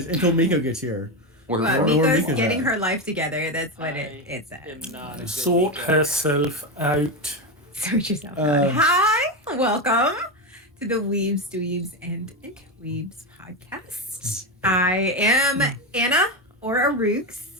until Miko gets here. Well, Or Miko's Miko's getting at. her life together. That's what it says. am not a good Sort Miko. herself out. Sort yourself out. Hi, welcome to the Weebs, Dweebs, and Interweebs podcast. I am Anna or Arooks.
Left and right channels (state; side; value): normal; both; correlation 0.13